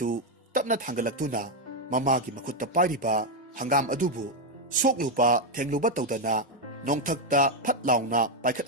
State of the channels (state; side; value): normal; both; correlation 0.03